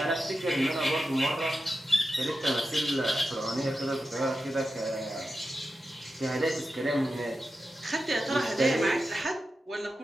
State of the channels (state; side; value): normal; both; correlation 0.91